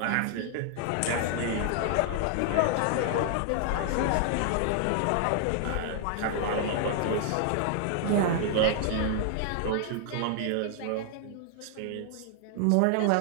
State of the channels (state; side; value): different; both; correlation 0.00